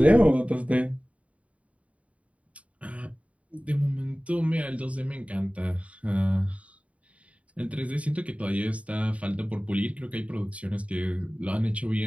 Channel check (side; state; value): left; late; 0.066 ms